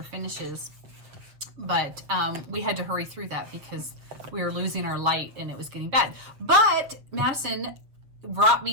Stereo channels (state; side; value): late; left; 7.4 ms